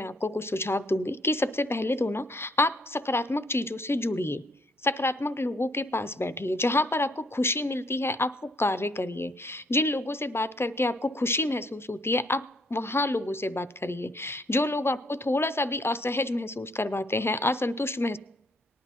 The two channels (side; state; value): both; normal; correlation 0.66